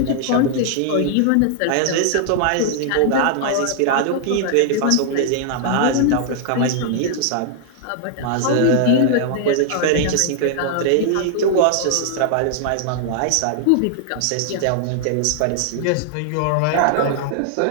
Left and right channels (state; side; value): different; both; correlation 0.00